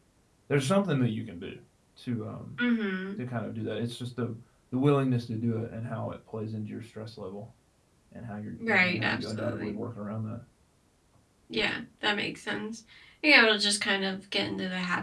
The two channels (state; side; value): identical; both; correlation 1.00